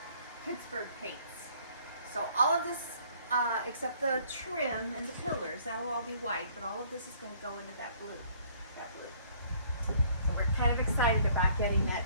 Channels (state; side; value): inverted; both; correlation -0.59